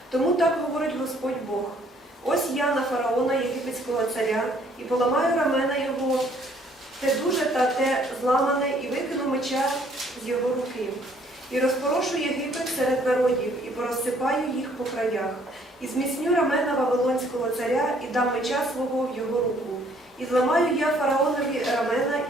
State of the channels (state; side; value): normal; both; correlation 0.62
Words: Тому так говорить Господь Бог. Ось я на фараона, єгипетського царя, і поламаю рамена його, те дуже та те зламане, і викину меча з його руки. І розпорошу Єгипет серед народів, і порозсипаю їх по краях. І зміцню рамена Вавилонського царя, і дам меча свого в його руку. І зламаю я фараонові рамена,